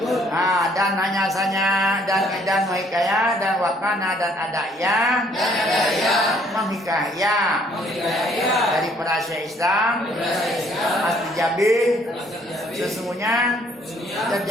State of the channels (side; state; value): both; normal; correlation 0.63